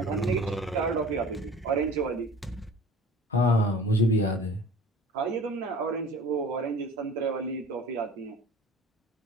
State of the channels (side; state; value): both; normal; correlation 0.43